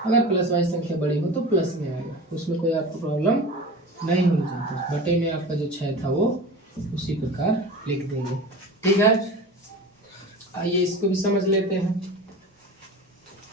अगर प्लस वाली संख्या बड़ी हो तो प्लस में आएगा। उसमें कोई आपको प्रॉब्लम नहीं होनी चाहिए। बटे में आपका जो 6 था वो उसी प्रकार लिख देंगे। ठीक है, आइए इसको भी समझ लेते हैं।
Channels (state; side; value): normal; both; correlation 0.34